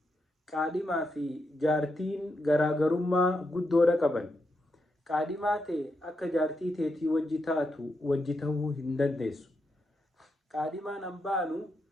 Qaadhimaa fi jaartiin garaagarummaa guddoodha qaban. Qaadhimaa ta'e akka jaartii teetii wajji taatu wajji ta'uu hin dandeessu. Qaadhimaan hambaanu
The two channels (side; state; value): both; normal; correlation 0.84